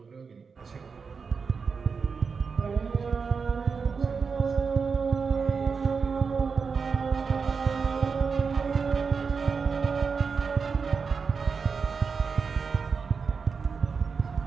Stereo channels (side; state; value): left; quieter; 5.4 dB